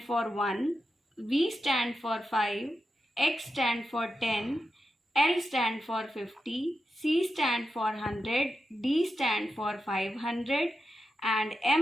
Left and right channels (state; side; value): normal; both; correlation 0.89